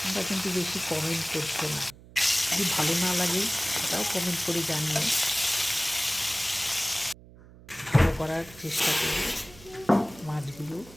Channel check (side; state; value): right; noise; hum, 21 dB below the sound